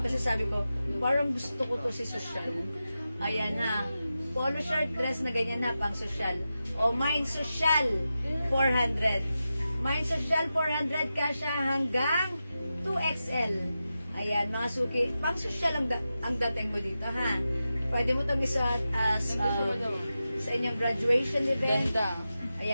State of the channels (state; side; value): inverted; both; correlation -0.92